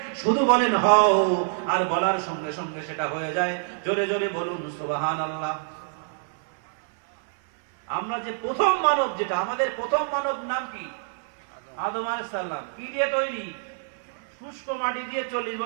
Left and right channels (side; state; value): left; silent; 61 dB below the other